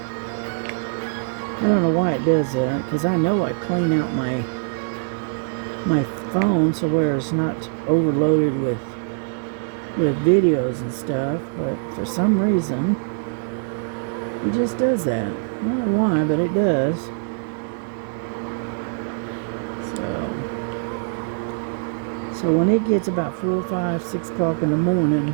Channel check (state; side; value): silent; left; digital silence